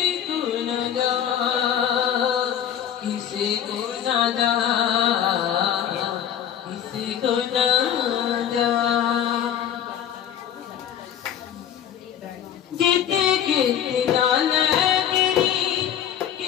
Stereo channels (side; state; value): right; quieter; 9.7 dB